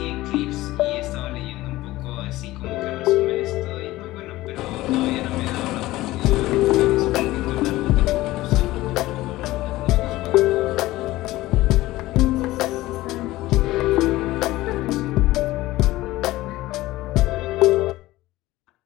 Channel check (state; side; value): quieter; right; 17.5 dB